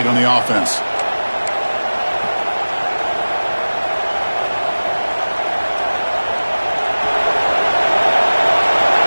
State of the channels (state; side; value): inverted; both; correlation -1.00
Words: on the offense.